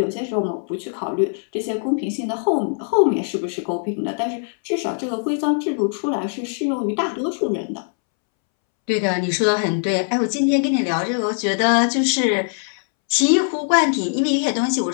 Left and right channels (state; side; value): silent; right; 65 dB below the other